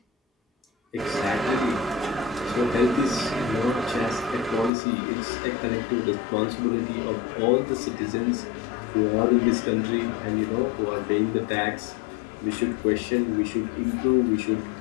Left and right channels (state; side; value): drops out; right; at 4.7 s